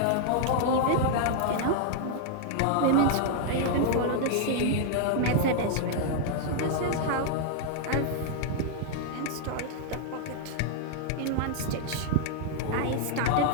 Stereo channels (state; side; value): different; both; correlation -0.01